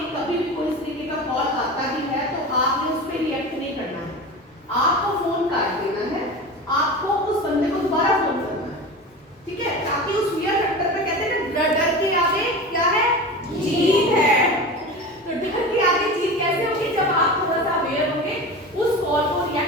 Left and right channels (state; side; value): normal; both; correlation 0.30